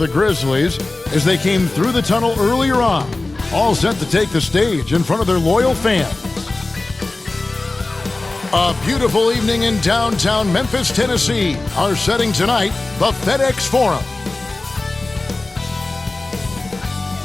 Grizzlies as they came through the tunnel earlier on, all set to take the stage in front of their loyal fans. A beautiful evening in downtown Memphis, Tennessee. Our setting tonight, the FedEx Forum.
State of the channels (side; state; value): right; quieter; 3.1 dB